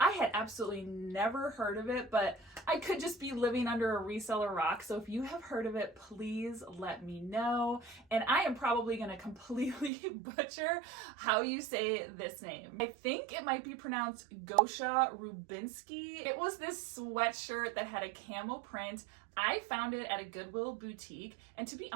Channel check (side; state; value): left; drops out; at 9.9 s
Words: I had absolutely never heard of it, but I could just be living under a reseller rock. So if you have heard of it, please let me know. And I am probably going to completely butcher how you say this name. I think it might be pronounced Gosha Rubinsky. It was this sweatshirt that had a camel print. I found it at a Goodwill boutique, and to be